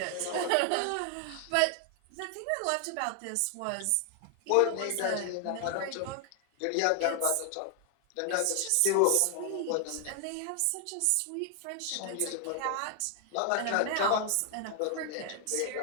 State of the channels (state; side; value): different; both; correlation 0.00